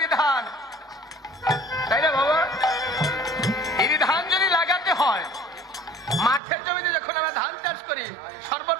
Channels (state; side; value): drops out; left; at 6.4 s